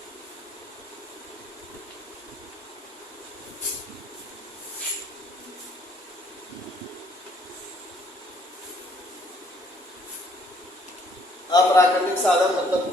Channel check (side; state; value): both; normal; correlation 0.64